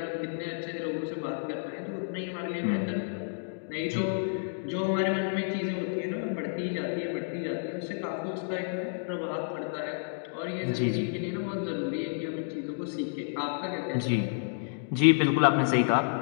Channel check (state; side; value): silent; right; digital silence